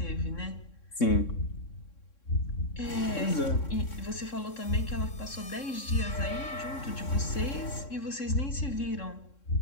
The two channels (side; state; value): right; late; 3.6 ms